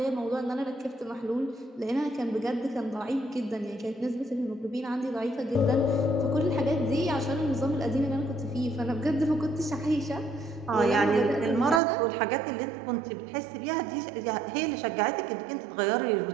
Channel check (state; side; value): drops out; left; at 11.8 s